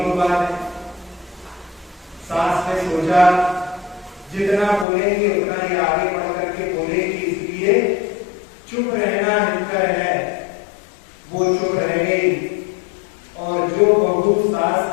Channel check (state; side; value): drops out; right; at 4.9 s